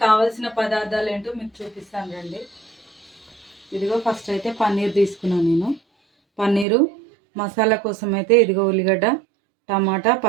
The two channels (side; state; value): left; drops out; at 6.7 s